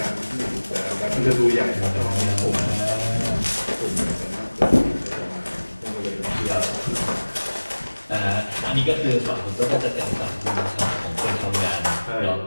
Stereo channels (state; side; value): inverted; both; correlation -1.00